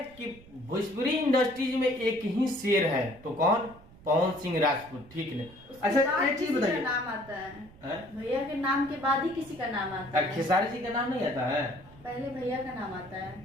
कि भोजपुरी इंडस्ट्रीज में एक ही शेर है, तो कौन? पवन सिंह राजपूत, ठीक है। अच्छा एक चीज बताइए, नाम आता है भैया के नाम के बाद ही किसी का नाम आता है। खेसारी जी का नाम नहीं आता है? पहले भैया का नाम आता है,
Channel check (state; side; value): noise; right; rumble, 22 dB below the sound